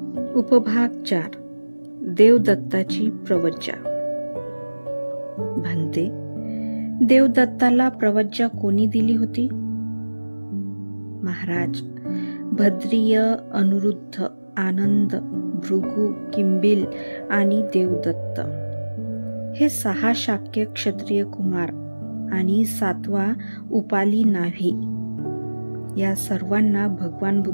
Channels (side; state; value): both; inverted; correlation -1.00